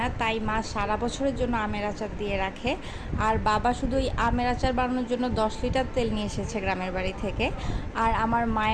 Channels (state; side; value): identical; both; correlation 1.00